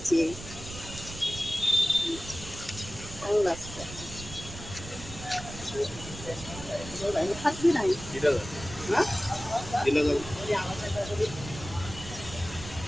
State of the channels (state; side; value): noise; right; rumble, 12 dB below the sound